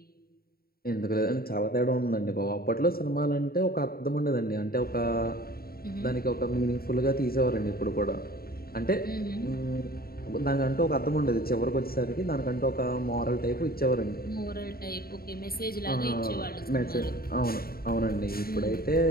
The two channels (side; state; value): right; late; 0.44 ms